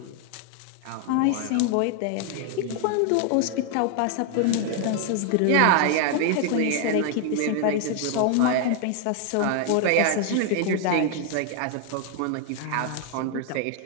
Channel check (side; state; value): both; different; correlation 0.00